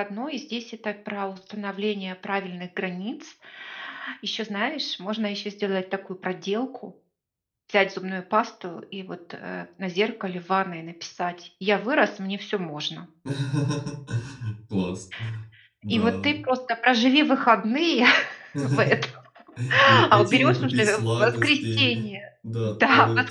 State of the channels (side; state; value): both; identical; correlation 1.00